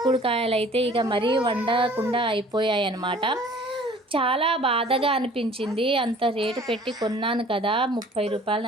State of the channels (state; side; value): normal; both; correlation 0.51